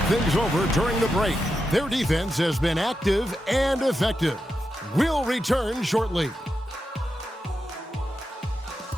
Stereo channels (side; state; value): both; normal; correlation 0.88